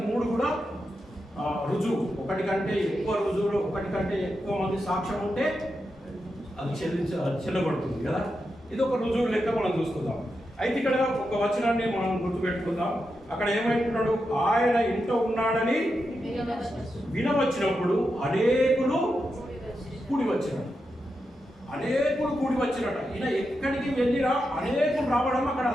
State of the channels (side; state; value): both; normal; correlation 0.87